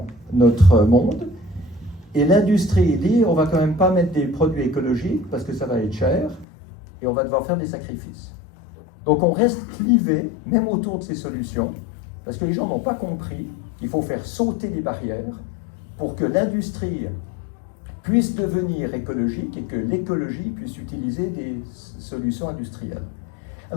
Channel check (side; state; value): right; drops out; at 6.5 s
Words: notre monde. Et l'industrie dit on ne va quand même pas mettre des produits écologiques parce que ça va être cher et on va devoir faire des sacrifices. Donc on reste clivé, même autour de ces solutions, parce que les gens n'ont pas compris qu'il faut faire sauter les barrières pour que l'industrie puisse devenir écologique et que l'écologie puisse utiliser des solutions industrielles.